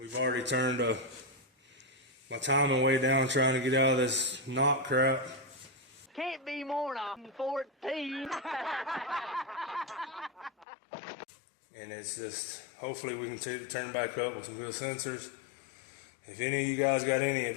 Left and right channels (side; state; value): right; drops out; at 10.7 s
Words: already turned my timing way down trying to get out of this knock crap. Can't be more than 14. And it's just, hopefully we can turn back up with some good sensors. If any of you guys got any